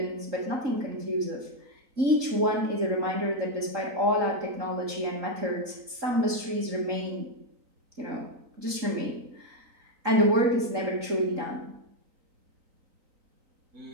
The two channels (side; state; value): left; late; 3.9 ms